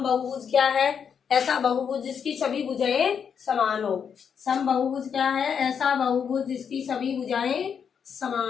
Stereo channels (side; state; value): right; quieter; 7.2 dB